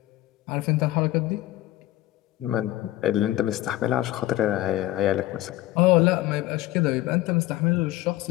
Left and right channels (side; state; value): right; quieter; 15.8 dB